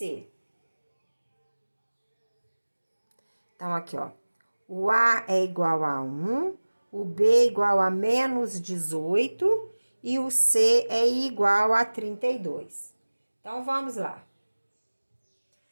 Então, aqui, ó. O A é igual a 1, o B é igual a menos 18 e o C é igual a 32. Então, vamos lá.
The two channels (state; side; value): inverted; both; correlation -1.00